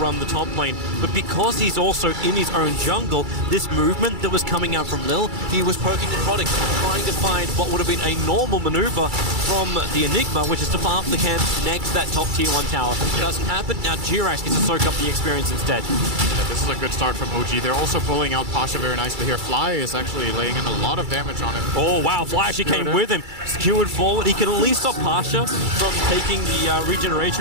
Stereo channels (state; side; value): late; left; 2.3 ms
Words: the top lane. But because he's also in his own jungle, this movement that was coming out from Lil, he was poking and prodding, trying to find what would have been a normal maneuver from the Enigma, which is to farm the camp next to that top tier 1 tower. It doesn't happen, now Jirax gets to soak up the experience instead. Yeah, this is a good start from OG. They're also pulling out Pasha very nicely here. Fly is actually laying in a lot of damage on him. Oh wow, Fly actually came with him. Skewered forward. He can at least stop Pasha from taking the